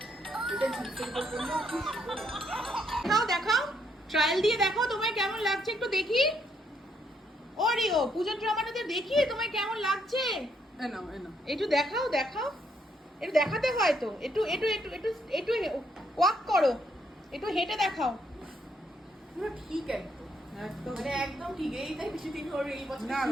নাও দেখাও, ট্রায়াল দিয়ে দেখো তোমায় কেমন লাগছে, একটু দেখি। ওরিও পুজোর ড্রামাটাতে দেখি তোমায় কেমন লাগছে। একটু দেখাও দেখাও, একটু দেখাতে হয় তো, একটু একটু একটু একটু একটু ওয়াক করো, একটু হেঁটে দেখাও। পুরো ঠিক একদম, মানে একদম ঠিক। এই তাই বেশি দিন হলো এই বছর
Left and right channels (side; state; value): both; normal; correlation 0.73